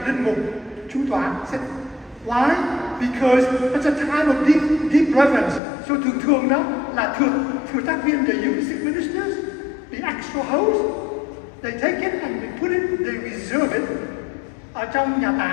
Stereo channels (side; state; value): right; drops out; at 5.6 s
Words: linh mục, chủ tọa, sit. Why? Because it's a time of deep reverence. So thường đó là thừa tác viên, the Eucharistic ministers, the extra host, they take it and they put it, they reserve it ở trong nhà